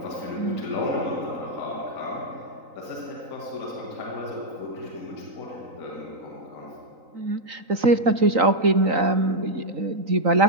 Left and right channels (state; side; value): late; left; 3.9 ms